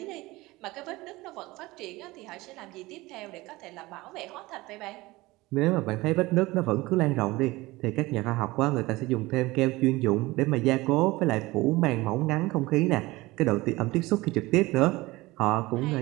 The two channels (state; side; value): quieter; left; 20.4 dB